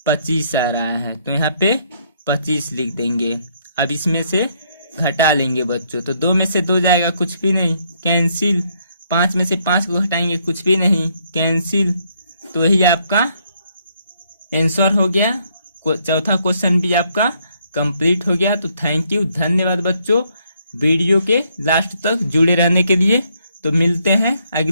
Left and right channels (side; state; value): both; inverted; correlation -0.71